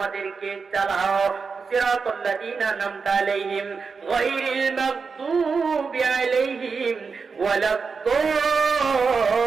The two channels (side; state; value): left; quieter; 5.1 dB